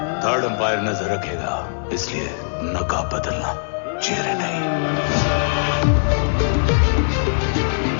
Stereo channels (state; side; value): silent; right; 65 dB below the other